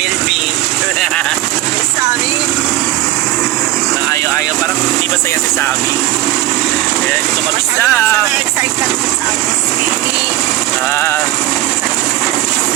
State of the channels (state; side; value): quieter; left; 15.2 dB